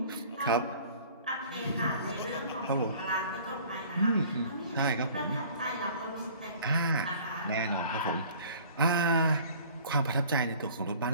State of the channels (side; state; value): both; inverted; correlation -0.49